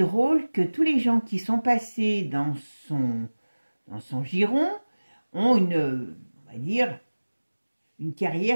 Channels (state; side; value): inverted; both; correlation -1.00